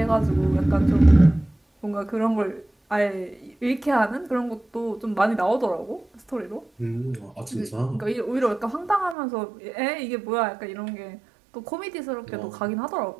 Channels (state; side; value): drops out; left; at 9.2 s